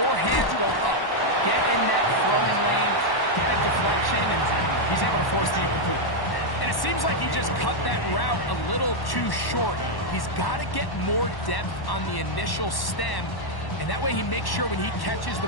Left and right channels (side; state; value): right; late; 1.1 ms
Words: hands go up. Get in that throwing lane, get a deflection, and he's able to force the incomplete. And it seems like he just cut that route a little too short. He's got to get more depth on the initial stem, and that way he makes sure when he catches the